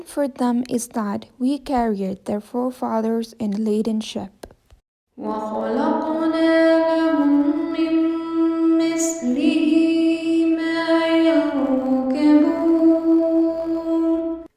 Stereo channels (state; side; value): identical; both; correlation 1.00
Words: for them is that we carried their forefathers in a laden ship. وخلقنا لهم من مثله ما يركبون.